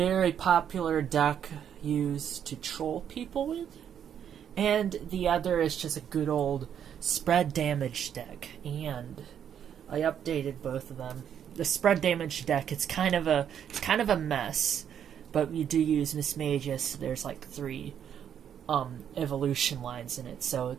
popular deck used to troll people with. And the other is just a good old spread damage deck. And I updated both of them. The spread damage deck, it's kind of a mess. But we do use Miss Magus. There's like three evolution lines in it, so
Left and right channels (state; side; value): quieter; left; 8.9 dB